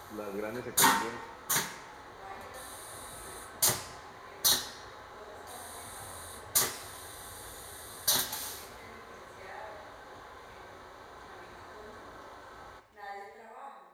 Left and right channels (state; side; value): identical; both; correlation 1.00